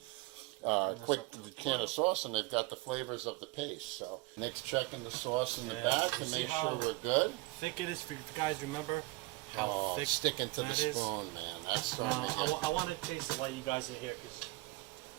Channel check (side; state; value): left; quieter; 22.7 dB